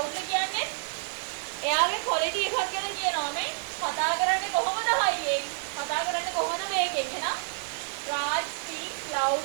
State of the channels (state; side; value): silent; left; 59 dB below the other